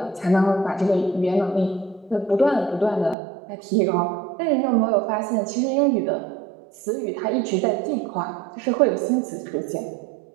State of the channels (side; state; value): left; drops out; at 3.2 s